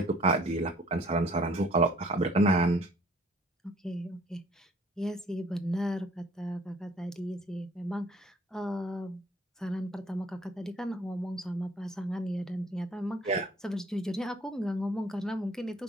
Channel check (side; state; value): both; normal; correlation 0.56